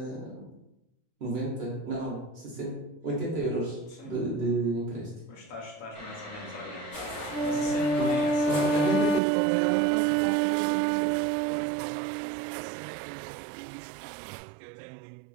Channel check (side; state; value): left; drops out; at 9.2 s